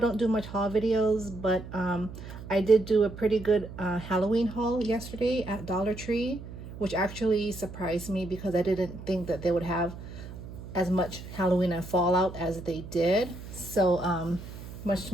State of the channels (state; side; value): noise; right; hum, 12 dB below the sound